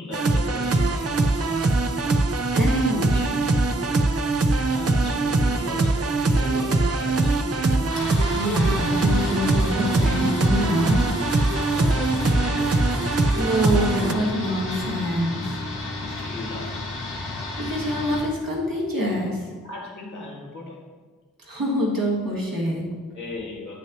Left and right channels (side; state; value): both; normal; correlation 0.70